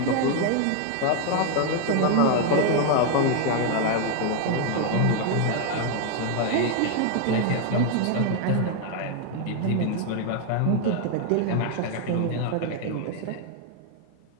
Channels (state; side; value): different; both; correlation 0.00